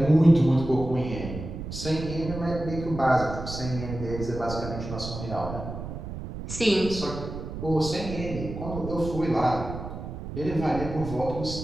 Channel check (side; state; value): right; noise; rumble, 8 dB below the sound